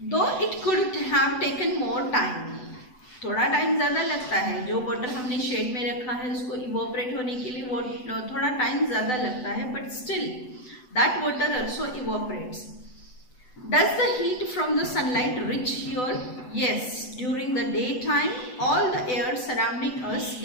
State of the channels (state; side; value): late; right; 8.0 ms